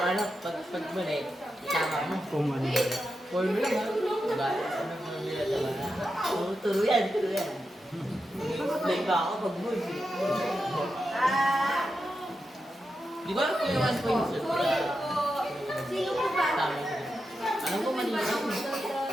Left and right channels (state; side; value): normal; both; correlation 0.88